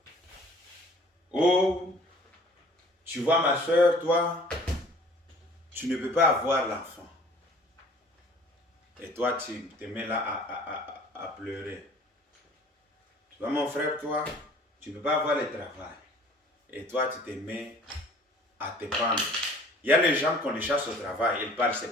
Oh, tu vois ma soeur, toi, tu ne peux pas avoir l'enfant. Et toi, tu te mets là à pleurer. Tu vois mon frère, toi, tu ne peux pas avoir le travail. Et toi, tu te mets à te pendre. Il y a les gens qu'on les chasse au travail, ils partent se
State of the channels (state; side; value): normal; both; correlation 0.51